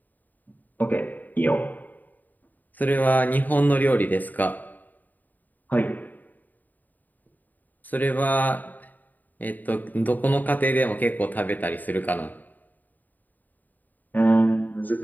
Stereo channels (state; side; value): late; right; 0.084 ms